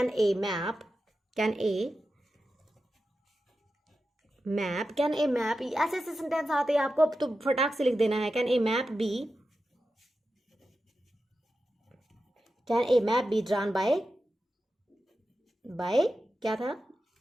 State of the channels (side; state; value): both; normal; correlation 0.91